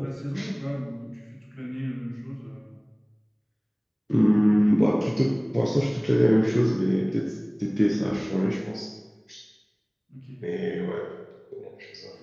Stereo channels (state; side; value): identical; both; correlation 1.00